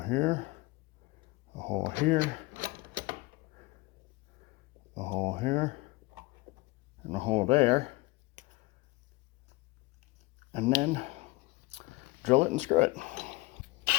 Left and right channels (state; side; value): quieter; right; 22.8 dB